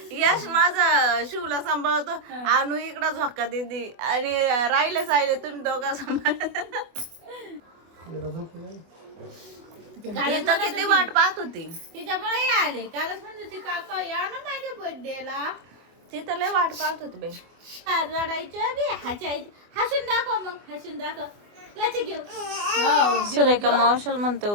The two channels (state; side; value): late; left; 24 ms